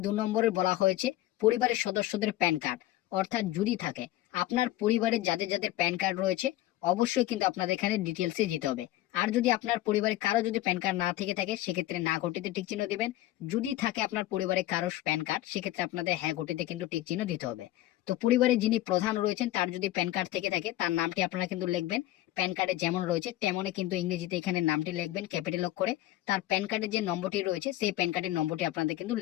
2 নম্বরে বলা হয়েছে পরিবারের সদস্যদের প্যান কার্ড, অর্থাৎ যদি থাকে আপনার পরিবারের যাদের যাদের প্যান কার্ড রয়েছে অবশ্যই কিন্তু আপনাদের এখানে ডিটেলসে দিতে হবে। আর যদি আপনার পরিবারে কারো যদি প্যান কার্ড না থেকে থাকে সেক্ষেত্রে না ঘটিতে টিক চিহ্ন দিবেন। যদি থাকে আপনার পরিবারে কারো প্যান কার্ড সেক্ষেত্রে আপনাদের হ্যাঁ ঘটিতে কিন্তু টিক চিহ্ন দিতে হবে। তো পরিবারে যিনি প্রধান রয়েছেন তার যদি প্যান কার্ড থেকে থাকে তার নামটি আপনারা কিন্তু লিখবেন। প্যান কার্ডে যেমন রয়েছে তেমনই কিন্তু ইংরেজিতে এখানে নামটি লিখবেন ক্যাপিটাল করে। তার প্যান কার্ডের যে নম্বরটি রয়েছে সেই প্যান কার্ডের নম্বরটি আপনাদের কিন্তু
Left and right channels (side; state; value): right; quieter; 15.2 dB